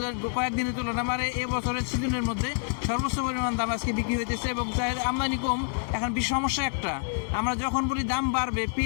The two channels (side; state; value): right; silent; digital silence